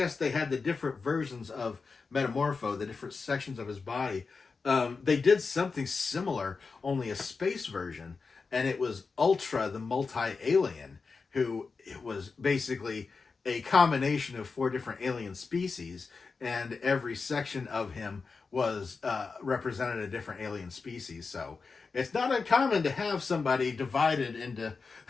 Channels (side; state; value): right; quieter; 4.6 dB